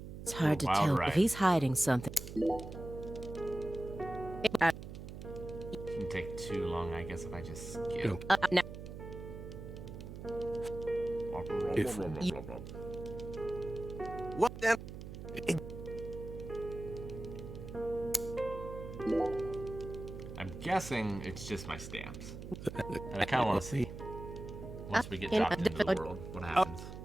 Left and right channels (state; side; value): noise; right; hum, 10 dB below the sound